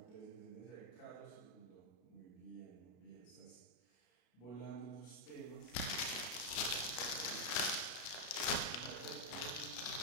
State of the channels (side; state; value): right; late; 34 ms